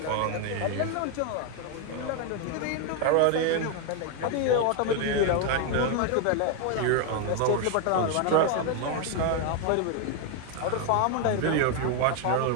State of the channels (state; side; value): different; both; correlation 0.01